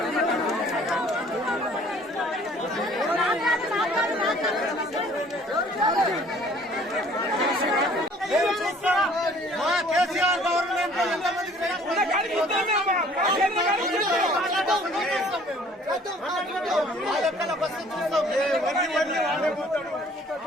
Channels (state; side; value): normal; both; correlation 0.55